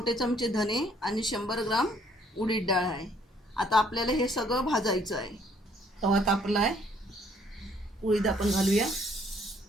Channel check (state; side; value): normal; both; correlation 0.63